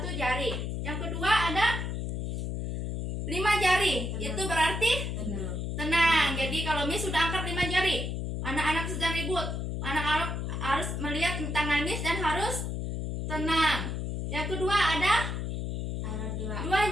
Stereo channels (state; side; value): noise; left; hum, 2 dB below the sound